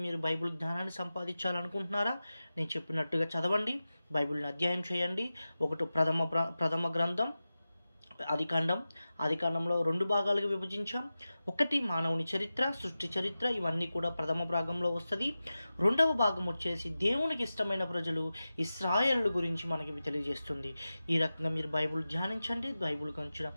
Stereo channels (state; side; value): inverted; both; correlation -0.94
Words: మీరు బైబిల్ జ్ఞానాన్ని సంపాదించాలనుకుంటున్నారా, నేను చెప్పినట్టుగా చదవండి, బైబిల్ని అధ్యయనం చేయండి. ఒకటి ప్రథమ గ్రంథం ఆదికాండంలో 2 భాగాలుగా విభజించాం. 1 మానవుని చరిత్ర, సృష్టి చరిత్ర, ఇవన్నీ కూడా ప్రథమ భాగంలో వస్తుంది. 2వ భాగం వచ్చేసి దేవునికి ఇష్టమైన ప్రజలు ఇశ్రాయేలు గురించి మనకి తెలియజేస్తుంది. ఈ రకంగా మీరు బైబిల్ ధ్యానించండి. బైబిల్ గురించి